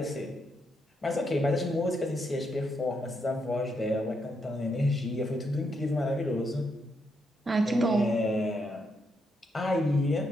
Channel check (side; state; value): both; normal; correlation 0.79